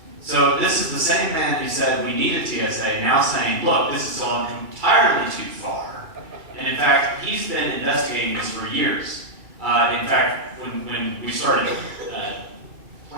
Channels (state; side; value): late; left; 2.3 ms